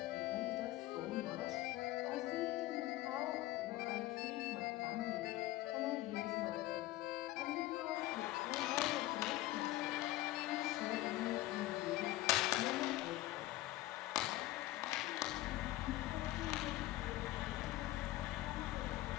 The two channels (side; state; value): right; quieter; 16.9 dB